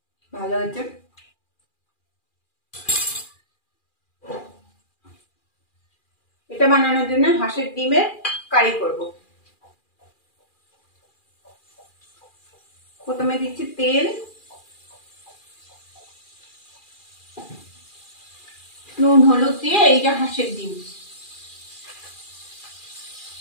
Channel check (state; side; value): late; right; 2.4 ms